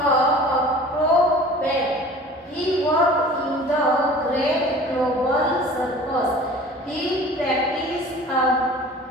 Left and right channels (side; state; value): both; normal; correlation 0.43